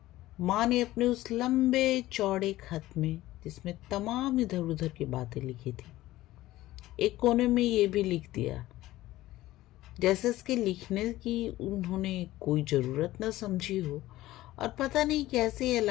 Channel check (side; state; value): right; quieter; 16.3 dB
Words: माँ ने अपने उस लंबे चौड़े खत में, जिसमें तमाम इधर उधर की बातें लिखी थी, एक कोने में ये भी लिख दिया, जैसे इसके लिखने की उन्होंने कोई जरूरत न समझी हो और पता नहीं कैसे ये